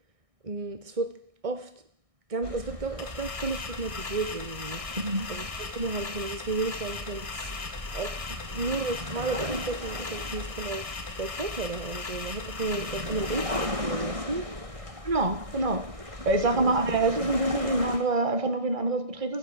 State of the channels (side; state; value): left; late; 1.6 ms